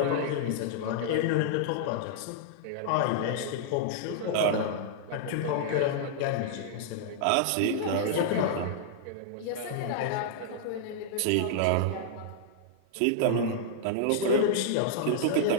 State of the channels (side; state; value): both; different; correlation -0.01